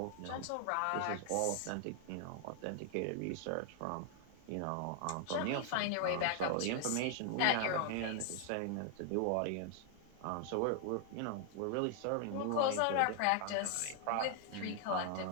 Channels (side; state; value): both; different; correlation 0.00